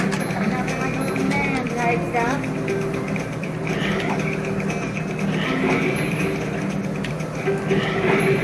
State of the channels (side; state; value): both; identical; correlation 1.00